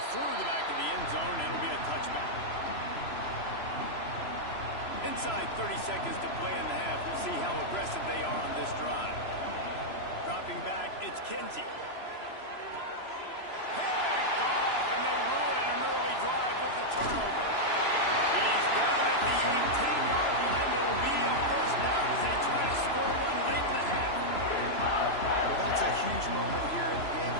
through the back of the end zone, and it'll be a touchback. Inside 30 seconds to play in the half. We'll see how aggressive they are on this drive. Dropping back, it's Kinsey. Picked off, and they ruin an early drive with the turnover. He's down at the 18-yard line. It'll be a first down as they try to score one late in the half. Well, that's a huge moment here in the game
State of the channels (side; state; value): right; late; 3.0 ms